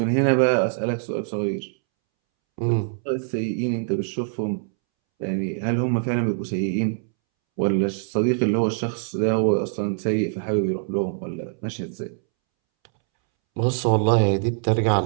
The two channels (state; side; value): silent; left; 63 dB below the other